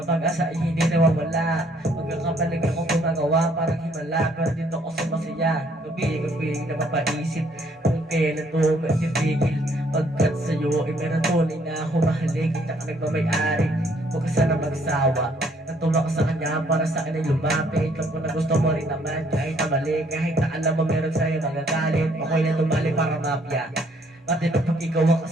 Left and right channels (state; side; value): normal; both; correlation 0.65